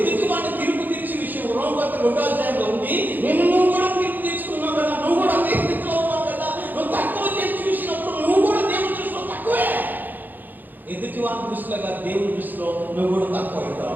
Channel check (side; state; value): left; late; 0.086 ms